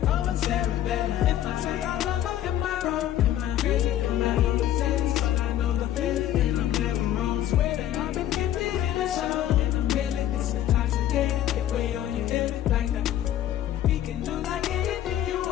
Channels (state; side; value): quieter; right; 12.0 dB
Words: Oh, I'm Sarah Bella. If I say I love her, am I wrong? Am I crazy? Am I overzealous? But I know the feeling, and I'm never wrong. Swear that I've been gifted in a song. In a million, it's intoxicating. Get way on your head like that. We can do like anything you